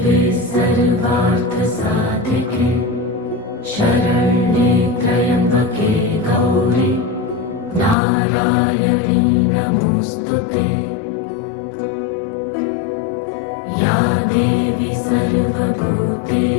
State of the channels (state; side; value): drops out; right; at 8.0 s